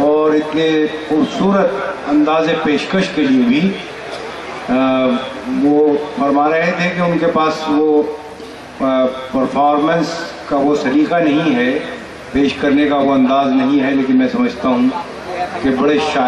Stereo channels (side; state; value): both; identical; correlation 1.00